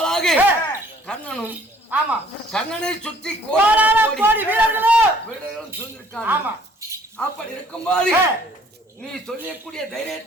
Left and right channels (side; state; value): both; normal; correlation 0.59